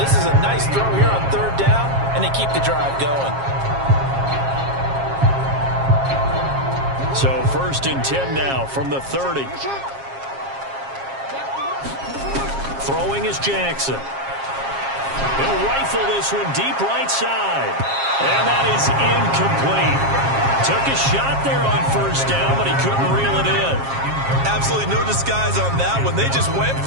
is a nice throw here on third down, and they keep the drive going. So 1st and 10 now from the 30. Throwing is Jackson. He'll rifle this one deep right side. And that is incomplete. Took a shot there on first down, but he couldn't reel it in. Absolutely no disguise on that one. They just went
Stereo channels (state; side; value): late; left; 7.4 ms